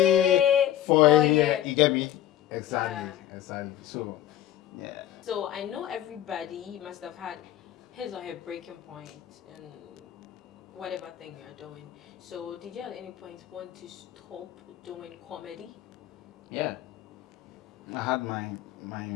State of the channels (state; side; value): quieter; right; 12.2 dB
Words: For a year. You get me? Exactly. Yeah. Exactly. So, yeah. So I know everybody must have had his or her breaking point in whatever thing you're doing. So did you at any point want to stop doing comedy? Yeah. I had my